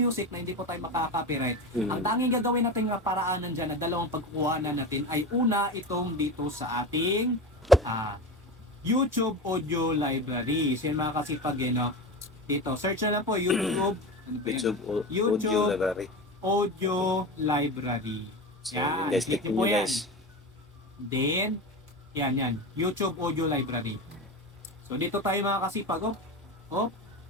na hindi po tayo makaka-copyright. Ang tanging gagawin natin nga paraanan dyan na dalawang pagkukuhanan natin ay una itong dito sa ating YouTube Audio Library. So yun mga kasipag, dito search na lang po YouTube Audio Library. Audio Library. So, yan, guys, click click po nyo yan. guys. Then, yan. YouTube Audio Library. So, dito tayo mga kasipag.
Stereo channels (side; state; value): both; normal; correlation 0.25